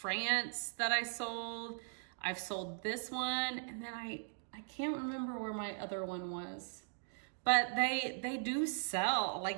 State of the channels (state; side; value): silent; left; digital silence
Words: that I sold. I've sold this one, and then I can't remember where my other one was. But they do sell,